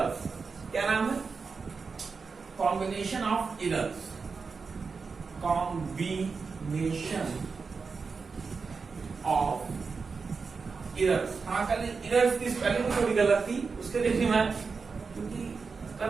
क्या नाम है? Combination of errors. Combination of errors. हाँ, कल एरर्स की स्पेलिंग थोड़ी गलत थी, उसके लिए भी मैं, क्योंकि कल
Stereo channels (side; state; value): left; quieter; 4.9 dB